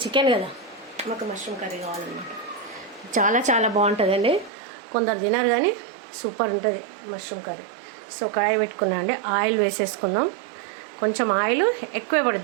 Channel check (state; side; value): drops out; left; at 4.5 s